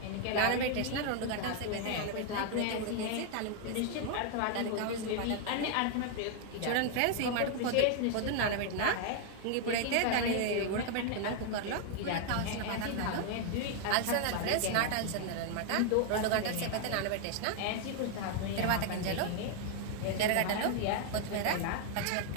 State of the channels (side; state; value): both; different; correlation 0.00